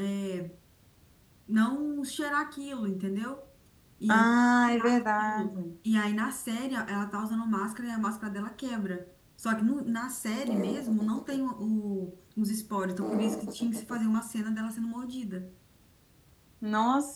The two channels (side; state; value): both; identical; correlation 1.00